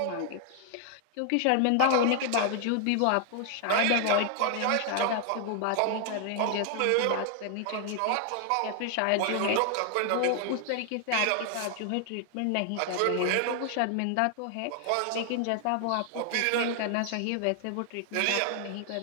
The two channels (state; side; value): different; both; correlation 0.00